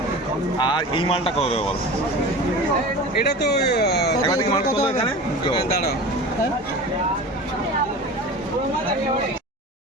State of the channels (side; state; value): both; normal; correlation 0.34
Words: আর এই মালটা কত দেবো বল? দেবো। এটা তো একবার থেকে মাল কত এখানে দাঁড়াও